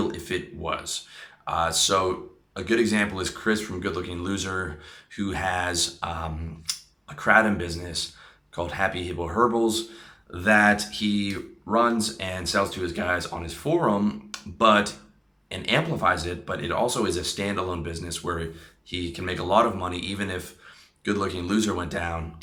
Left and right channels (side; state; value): both; identical; correlation 1.00